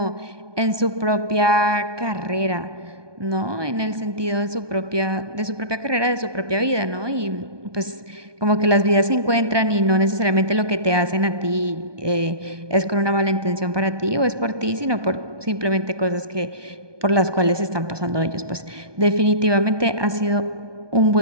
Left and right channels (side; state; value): left; late; 1.2 ms